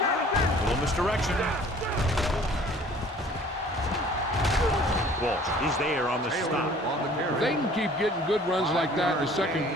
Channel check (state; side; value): normal; both; correlation 0.52